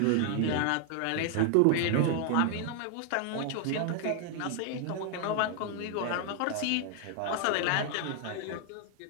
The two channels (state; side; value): different; both; correlation 0.00